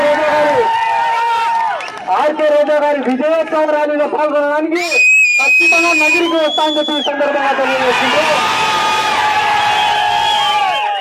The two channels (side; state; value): both; identical; correlation 1.00